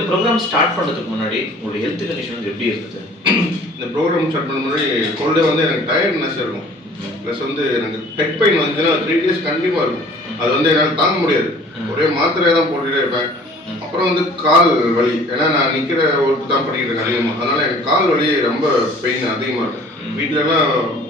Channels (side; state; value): both; normal; correlation 0.50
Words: ப்ரோக்ராம் ஸ்டார்ட் பண்ணுறதுக்கு முன்னாடி உங்களுடைய ஹெல்த் கண்டிஷன் வந்து எப்படி இருந்தது? இந்த ப்ரோக்ராம் ஸ்டார்ட் பண்ண முன்னாடி கோல்டே வந்து எனக்கு டயர்ட்னஸ் இருக்கும். ப்ளஸ் வந்து எனக்கு ஹெட் பெயின் வந்துச்சுன்னா 3 days கண்டிப்பாக இருக்கும். அது வந்து என்னால் தாங்க முடியாது. ஒரே மாத்திரையை தான் போட்டுட்டே இருப்பேன். அப்புறம் வந்து கால் வலி, ஏன்னா நான் நிக்கிற ஒர்க் தான் பண்ணிட்டு இருக்கேன் அதிகமாக, அதனால எனக்கு கால் வலி ரொம்ப பெயின் அதிகமாக இருக்கும். வீட்டிலலாம்